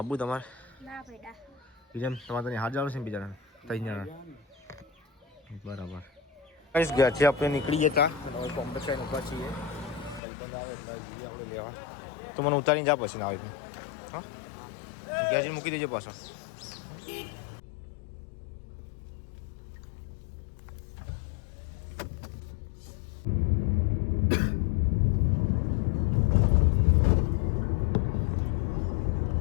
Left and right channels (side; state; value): right; drops out; at 10.2 s